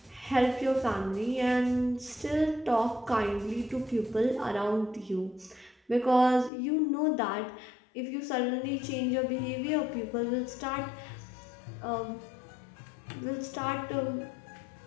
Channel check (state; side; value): drops out; right; at 6.5 s